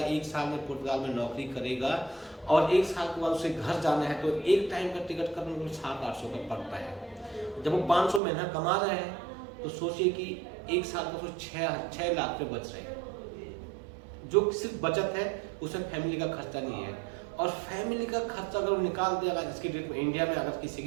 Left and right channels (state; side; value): drops out; left; at 8.2 s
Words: 1 साल में पुर्तगाल में नौकरी करेगा और 1 साल के बाद उसे घर जाना है तो एक टाइम का टिकट करने को 700-800 का पड़ता है। जब वो 500 महीना कमा रहे हैं तो सोचिए कि 1 साल का 6 लाख रुपये बच रहे हैं। जो सिर्फ बचत है उसमें फैमिली का खर्चा नहीं है। और फैमिली का खर्चा अगर निकाल दिया जाए, जिसकी डेट में इंडिया में अगर किसी